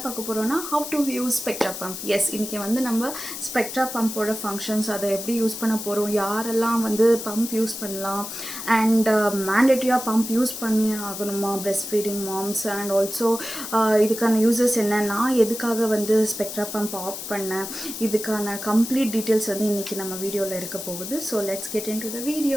பார்க்க போறோம்னா how to use spectra pump. Yes, இன்னைக்கு வந்து நம்ம spectra pump ஓட functions அதை எப்படி யூஸ் பண்ண போறோம், யாரெல்லாம் வந்து pump யூஸ் பண்ணலாம் and mandatory pump யூஸ் பண்ணி ஆகணுமா breastfeeding moms and also இதுக்கான யூசஸ் என்ன, நான் எதுக்காக வந்து spectra pump ஆஃப் பண்ணேன், இதுக்கான complete details வந்து இன்னைக்கு நம்ம வீடியோல இருக்க போகுது. So let's get into the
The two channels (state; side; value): noise; left; hiss, 8 dB below the sound